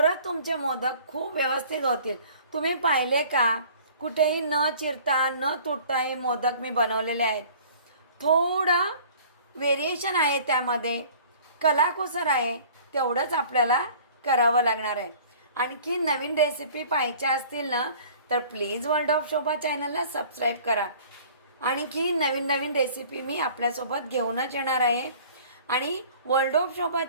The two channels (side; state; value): both; inverted; correlation -0.49